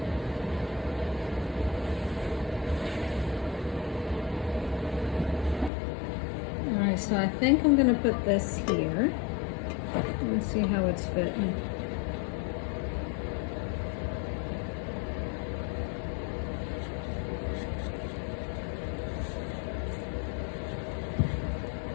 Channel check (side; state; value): right; drops out; at 5.7 s